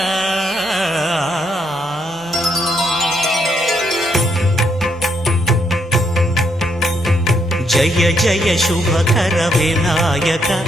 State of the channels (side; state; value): both; normal; correlation 0.75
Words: జయ జయ శుభకర వినాయక